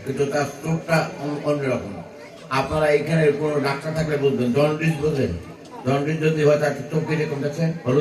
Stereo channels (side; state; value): both; identical; correlation 1.00